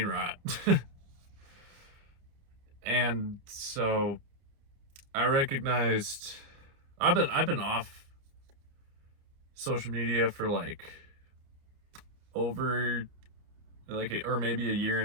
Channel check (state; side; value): late; left; 29 ms